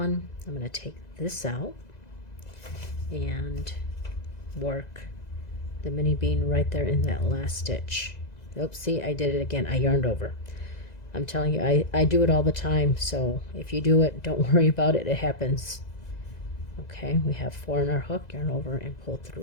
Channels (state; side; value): late; right; 2.0 ms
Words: I'm going to take this out and work the mini bean right there in that last stitch. Oops, see, I did it again. I yarned over. I'm telling you, I do it all the time, so if you do it, don't worry about it. It happens. Okay, we have 4 in our hook, yarn over, and pull